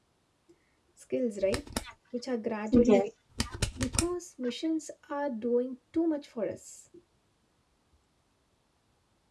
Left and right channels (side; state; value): both; identical; correlation 1.00